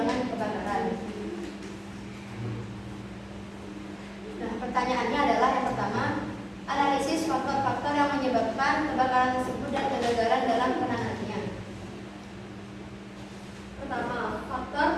kebakaran. Nah, pertanyaannya adalah yang pertama, analisis faktor-faktor yang menyebabkan kebakaran tersebut dan kegagalan dalam penanganannya. Pertama, faktor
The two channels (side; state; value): both; identical; correlation 1.00